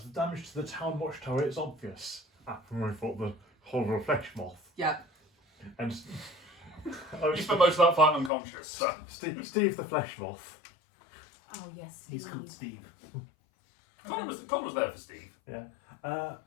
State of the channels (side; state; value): right; drops out; at 8.3 s